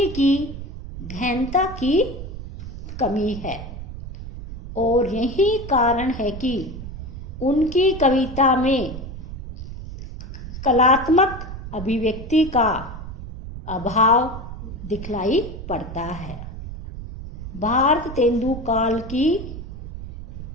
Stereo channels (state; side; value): noise; right; rumble, 10 dB below the sound